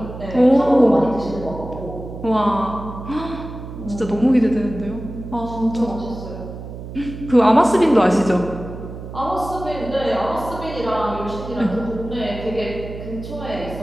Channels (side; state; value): right; noise; hum, 11 dB below the sound